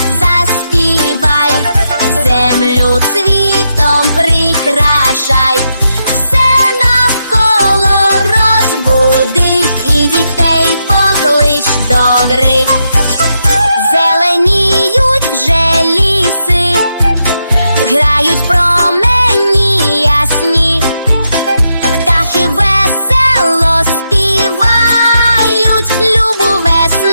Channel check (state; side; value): inverted; both; correlation -0.83